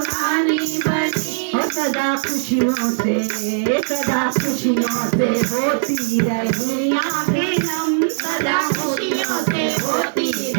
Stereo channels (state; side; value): silent; left; 62 dB below the other